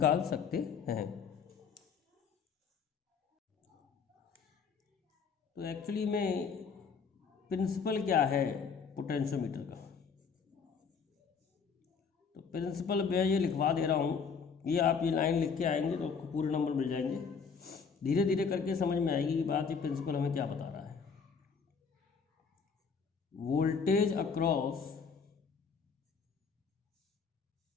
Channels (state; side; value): quieter; right; 5.9 dB